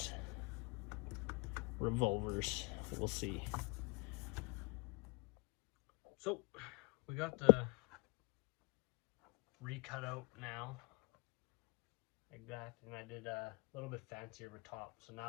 revolvers. We'll see. So we got the recut out now, like that, and I did a little bit fancier with top. So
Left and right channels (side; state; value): right; quieter; 29.4 dB